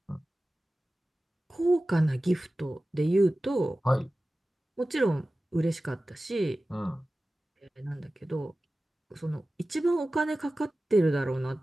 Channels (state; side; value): normal; both; correlation 0.96